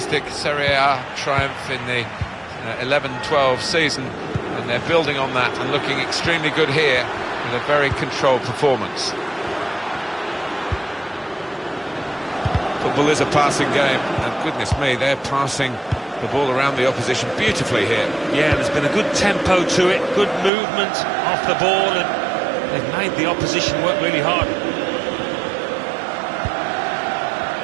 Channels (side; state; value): left; drops out; at 20.5 s